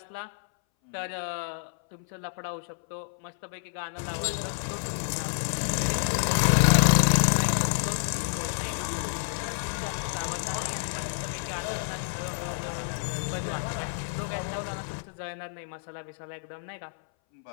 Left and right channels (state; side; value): silent; right; 59 dB below the other